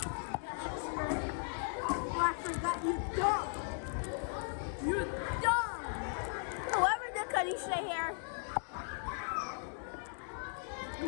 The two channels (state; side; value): silent; right; 53 dB below the other